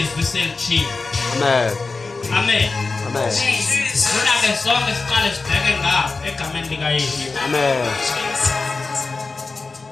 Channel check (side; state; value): right; quieter; 3.9 dB